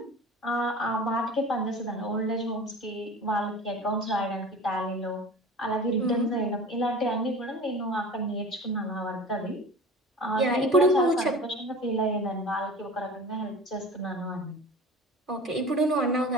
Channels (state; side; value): normal; both; correlation 0.37